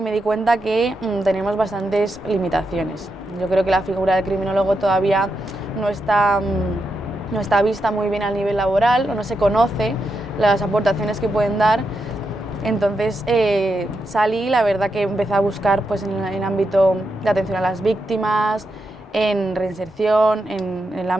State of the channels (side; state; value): both; normal; correlation 0.85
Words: me di cuenta que tenemos bastantes limitaciones. Yo creo que la figura del criminólogo todavía no está vista muy bien a nivel laboral, o no se conoce las aportaciones que pueden dar. Entonces salí, la verdad que empecé a buscar pues, en el ámbito de atención a las víctimas, en reinserción, en el